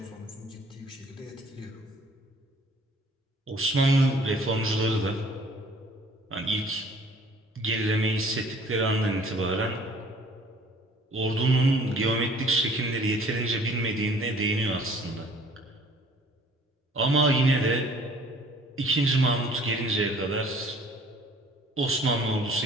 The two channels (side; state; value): both; normal; correlation 0.54